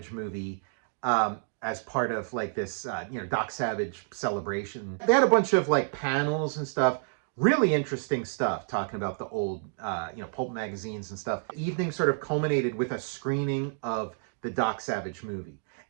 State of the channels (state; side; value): silent; left; digital silence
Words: movie as part of like this, Doc Savage celebration. They had a bunch of like panels and stuff, really interesting stuff, talking about the old, pulp magazines and stuff. The evening sort of culminated with a screening of the Doc Savage movie.